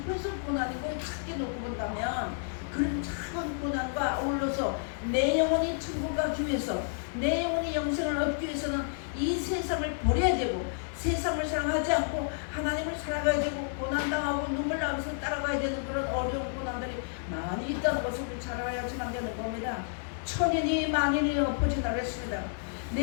그래서 고난이고 작게 놓고 본다면 그런 작은 고난과 어울러서 내 영혼이 천국 가기 위해서 내 영혼이 영생을 얻기 위해서는 이 세상을 버려야 되고 세상을 사랑하지 않고 하나님을 살아가야 되고 고난당하고 눈물 나면서 따라가야 되는 그런 어려운 고난들이 많이 있다는 것을 우리 잘 알아야지만 되는 겁니다. 천인이 만인이 엎어진다고 했습니다.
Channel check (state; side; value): silent; right; digital silence